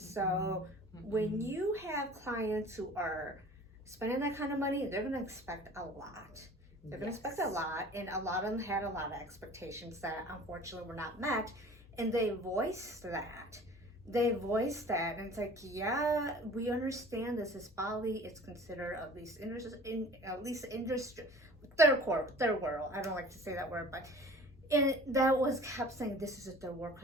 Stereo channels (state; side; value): normal; both; correlation 0.45